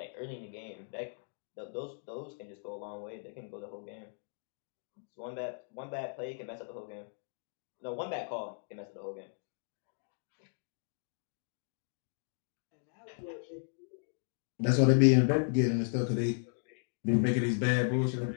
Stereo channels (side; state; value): right; silent; digital silence